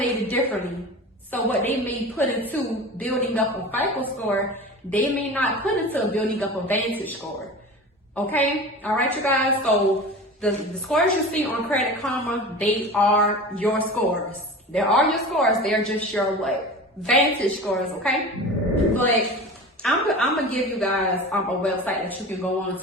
differently. So what they may put into building up a FICO score, they may not put into building up a Vantage score. Okay? All right, you guys? So the scores you see on Credit Karma, they are your scores. They are your scores. They're just your what? Vantage scores, okay? But I'm gonna give you guys a website that you can go on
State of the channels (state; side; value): normal; both; correlation 0.33